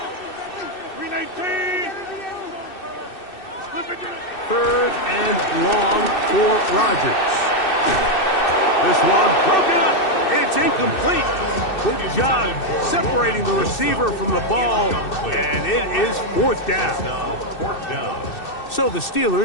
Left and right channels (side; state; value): right; late; 2.6 ms